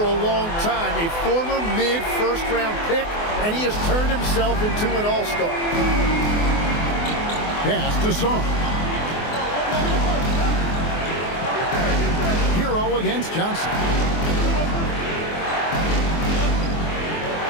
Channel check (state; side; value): late; right; 24 ms